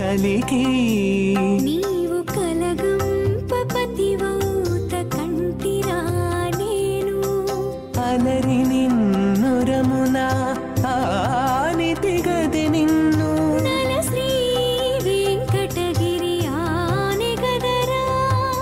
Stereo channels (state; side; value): identical; both; correlation 1.00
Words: నీవు కలగంపపతివౌత కంటిరా నేను అలరి నిన్నురమున ఆనితి గదె నిన్ను నల శ్రీ వెంకటగిరి ఆనే గదరా